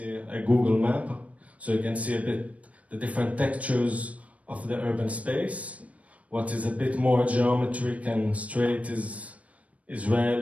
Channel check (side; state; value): left; late; 0.066 ms